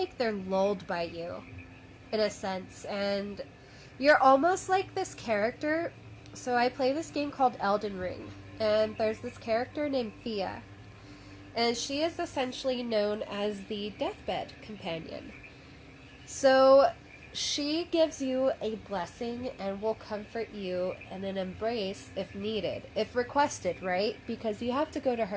they're lulled by you, in a sense, and you're almost like this character. So I play this game called Elden Ring, and there's this character named Thea, and she is essentially known as the deathbed companion. So she gives you a blessing and will comfort you in an embrace if needed, if requested, right? Because you have to go to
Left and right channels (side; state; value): both; identical; correlation 1.00